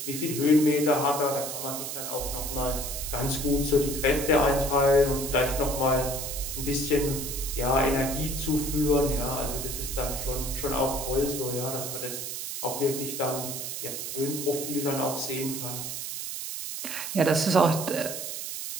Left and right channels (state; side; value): noise; right; hiss, 5 dB below the sound